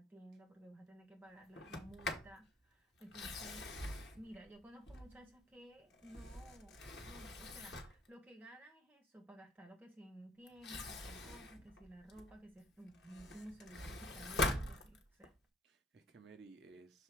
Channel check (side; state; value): both; normal; correlation 0.57